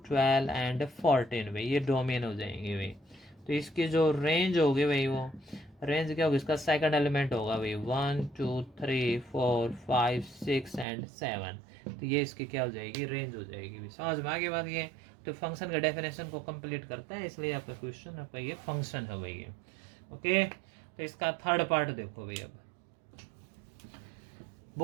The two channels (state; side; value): drops out; left; at 10.9 s